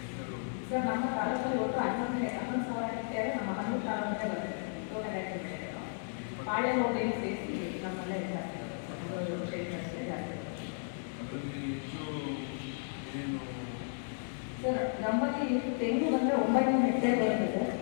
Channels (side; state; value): right; silent; digital silence